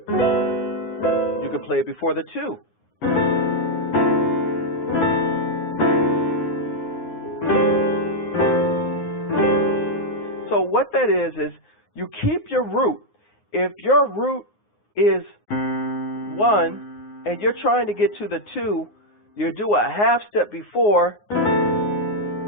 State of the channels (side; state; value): right; late; 9.6 ms